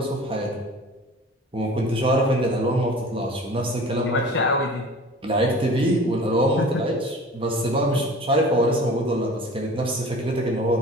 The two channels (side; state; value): both; normal; correlation 0.42